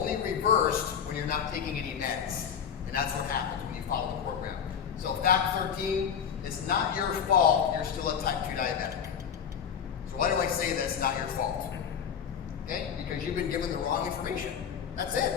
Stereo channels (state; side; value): quieter; right; 7.8 dB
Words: reversed when you're not taking any meds. And that's what happens when you follow the program. So fact 13 it's not your fault you're still a type 2 diabetic. So why do I say that's not your fault? Okay, because you've been given the wrong information. That's